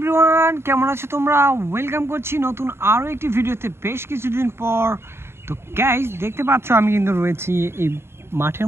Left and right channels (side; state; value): left; late; 0.12 ms